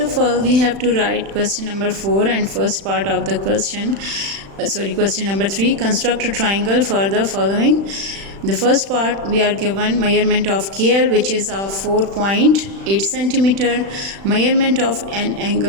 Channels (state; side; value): late; left; 36 ms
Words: all, we have to write question number 4 and first part of the question. Question number 3. Construct a triangle for the following. The first part, we are given measurement of KL, which is of 4.8 centimeter. Measurement of an